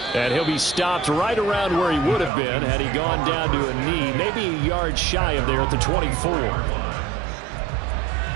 And he'll be stopped right around where he would have been had he gone down to a knee, maybe a yard shy of there at the 24.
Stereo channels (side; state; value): left; drops out; at 2.3 s